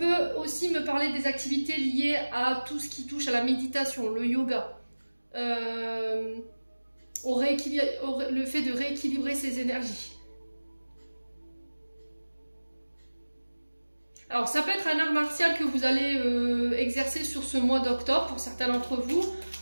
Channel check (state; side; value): inverted; both; correlation -1.00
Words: aussi me parler des activités liées à tout ce qui touche à la méditation, le yoga, le fait de rééquilibrer ses énergies. Alors ça peut être un art martial que vous allez exercer sur ce mois d'octobre pour certains d'entre vous,